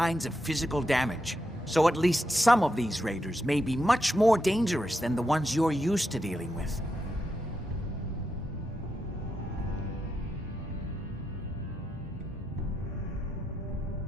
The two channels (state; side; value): normal; both; correlation 0.85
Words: of physical damage. So at least some of these raiders may be much more dangerous than the ones you're used to dealing with.